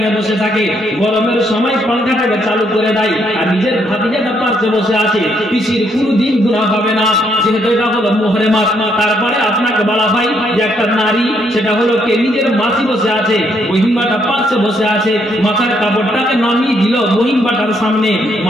এ বসে থাকে, গরমের সময় পাঙ্খাটাকে চালু করে দেয় আর নিজের ভাতিজাটা পাশে বসে আছে, পিসির কোনোদিন গুনাহ হবে না, যেহেতু এটা হলো মুহরমাত। তারপরে আপনাকে বলা হয় যে একটা নারী, সেটা হলো কে নিজের মাসি বসে আছে, বহিনবাটা পাশে বসে আছে, মাথার কাপড়টাকে নামিয়ে দিল বহিনবাটার সামনে,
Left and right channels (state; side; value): normal; both; correlation 0.73